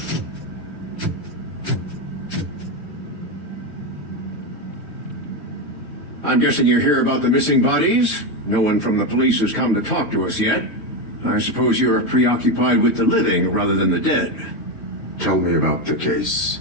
I'm guessing you're here about the missing bodies? No one from the police has come to talk to us yet. I suppose you're preoccupied with the living rather than the dead. Tell me about the case.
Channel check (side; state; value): right; late; 3.2 ms